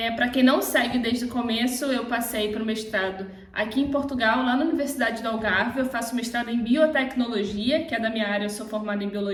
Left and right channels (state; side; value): identical; both; correlation 1.00